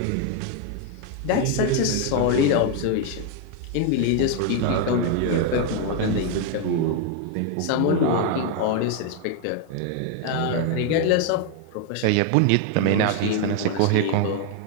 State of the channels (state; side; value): different; both; correlation 0.01